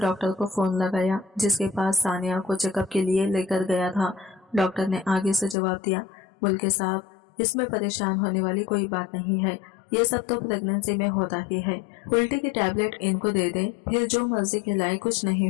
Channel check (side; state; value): right; drops out; at 5.6 s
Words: को फोन लगाया, जिसके पास सानिया को चेकअप के लिए लेकर गया था। डॉक्टर ने आगे से जवाब दिया, मुल्के साहब, इसमें परेशान होने वाली कोई बात नहीं है, ये सब तो प्रेगनेंसी में होता ही है। उल्टी की टैबलेट इनको दे दें, फिर जो मर्जी खिलाए, कुछ नहीं